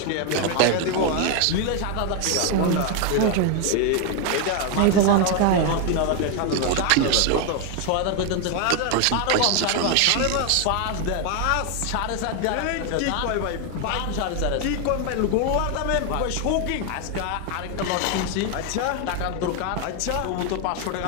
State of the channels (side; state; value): both; different; correlation 0.01